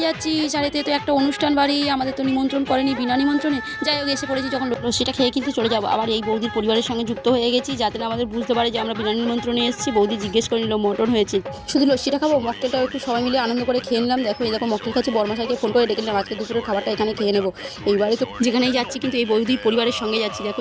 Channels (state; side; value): identical; both; correlation 1.00